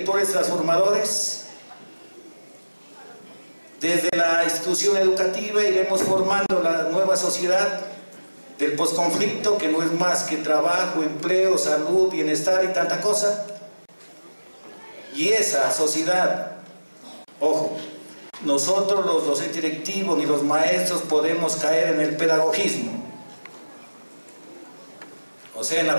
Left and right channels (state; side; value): inverted; both; correlation -1.00